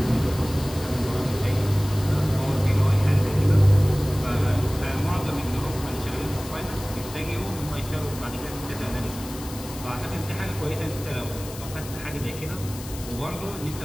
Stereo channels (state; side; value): noise; left; hiss, 14 dB below the sound